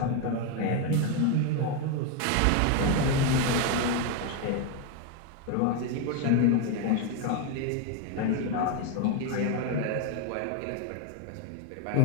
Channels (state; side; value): different; both; correlation 0.02